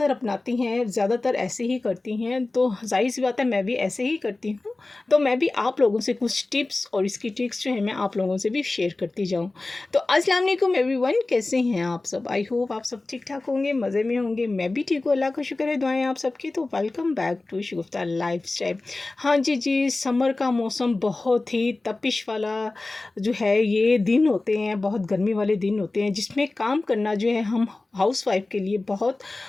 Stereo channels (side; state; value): right; quieter; 3.2 dB